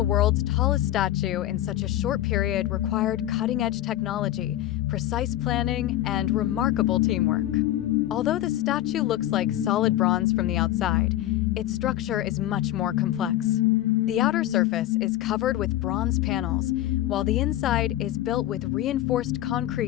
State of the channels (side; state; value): right; quieter; 13.9 dB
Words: world's tallest statue in such a short period required cutting-edge technology, precise planning, and remarkable teamwork. Although the statue looks like solid bronze from the outside, its structure is much more complex. The outer surface is covered with bronze panels, while the inside is built with reinforced